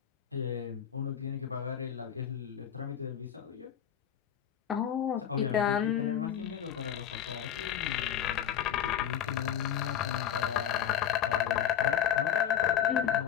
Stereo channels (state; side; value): quieter; right; 9.4 dB